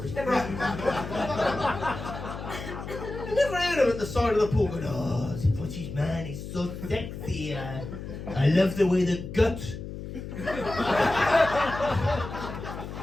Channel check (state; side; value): noise; left; hum, 9 dB below the sound